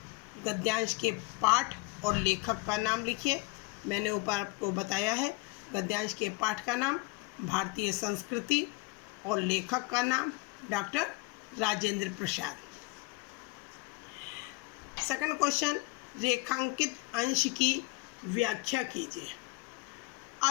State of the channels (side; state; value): right; quieter; 24.7 dB